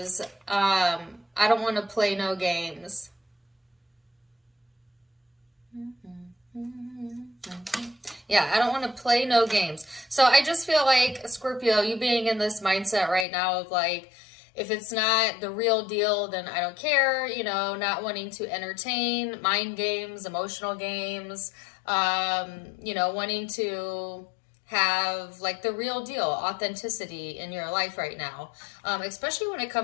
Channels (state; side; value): drops out; right; at 13.2 s